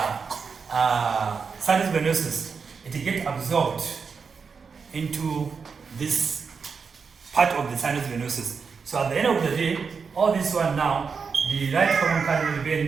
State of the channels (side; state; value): left; quieter; 5.5 dB